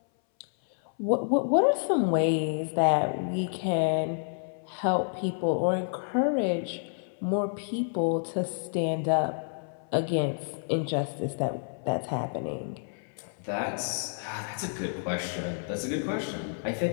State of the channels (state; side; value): silent; right; 58 dB below the other